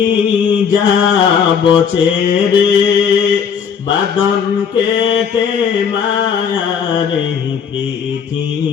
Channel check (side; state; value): right; quieter; 7.1 dB